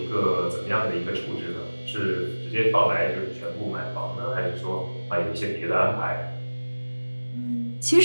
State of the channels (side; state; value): both; inverted; correlation -1.00